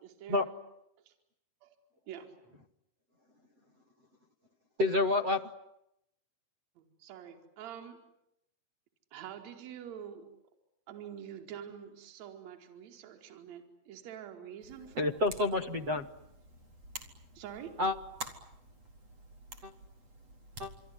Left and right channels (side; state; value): left; late; 8.1 ms